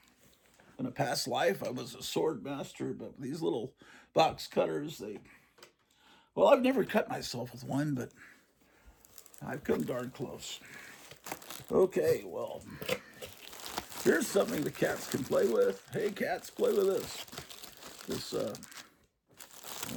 in a past life I was a sword master, but these little box cutters, well, I've never cut myself with one, but I've come darn close. Okay, well, here's something the cats can play with. Hey, cats, play with this. Oh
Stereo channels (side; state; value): both; identical; correlation 1.00